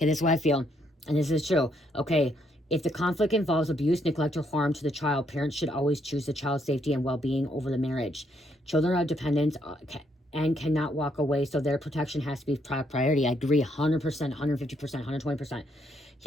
this is what I feel. And this is true. Okay, if the conflict involves abuse, neglect, or harm to the child, parents should always choose the child's safety and well-being over the marriage. Children are dependent and cannot walk away, so their protection has to be priority. I agree 100%, 150%, 120%.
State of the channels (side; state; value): both; normal; correlation 0.73